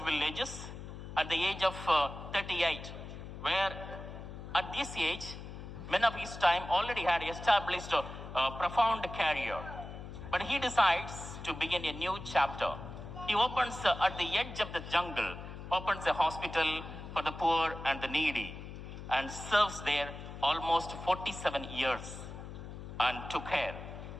villages at the age of 38, where at this age, men of his time already had established a profound career. But he decides to begin a new chapter. He opens at the edge of the jungle, opens a hospital for the poor and the needy, and serves there almost 47 years and took care.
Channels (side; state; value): left; noise; hum, 11 dB below the sound